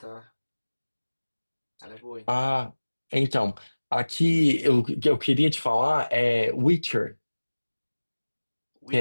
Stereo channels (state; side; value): inverted; both; correlation -1.00